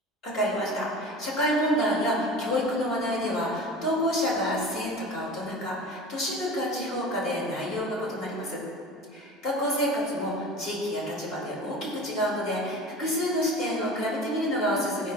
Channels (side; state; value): both; normal; correlation 0.36